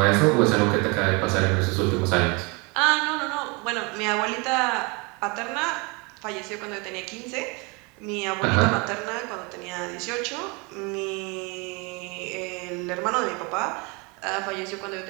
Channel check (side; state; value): left; quieter; 29.2 dB